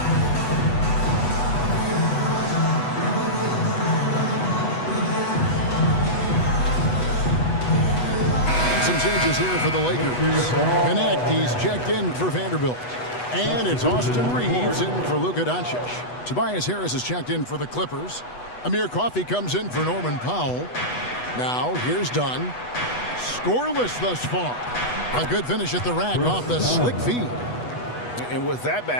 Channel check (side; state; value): right; late; 8.1 ms